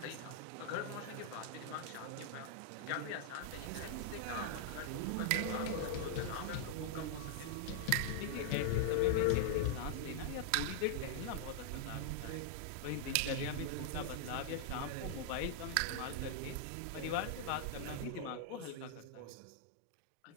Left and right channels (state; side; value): different; both; correlation 0.00